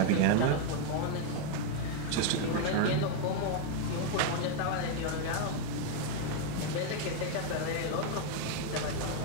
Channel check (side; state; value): both; different; correlation 0.01